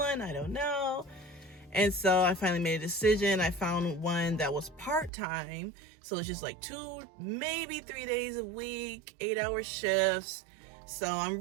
I don't know. And so I finally made a decision. I found one that was part-time. So it's just like 2, maybe 3 days a week, 8-hour shifts. So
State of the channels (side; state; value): left; drops out; at 5.1 s